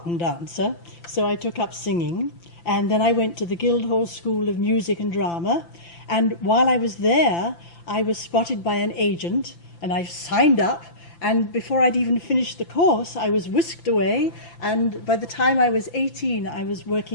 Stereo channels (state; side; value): late; right; 5.9 ms